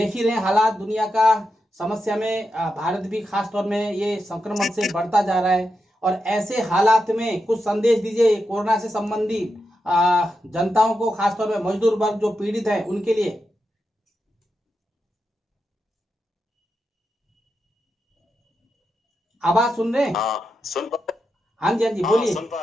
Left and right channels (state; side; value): normal; both; correlation 0.87